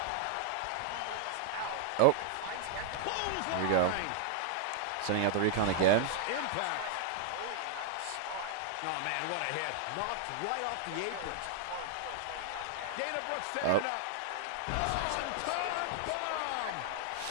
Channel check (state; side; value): different; both; correlation -0.01